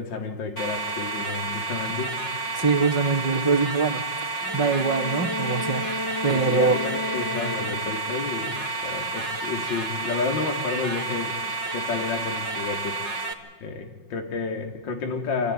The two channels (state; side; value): late; right; 5.5 ms